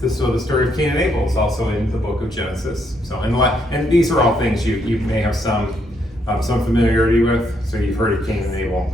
the story of Cain and Abel is also in the book of Genesis. So and these are all things you may have some familiarity with. So you've heard of Cain and Abel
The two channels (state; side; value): normal; both; correlation 0.74